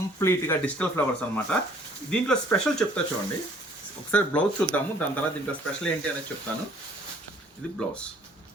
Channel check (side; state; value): both; normal; correlation 0.58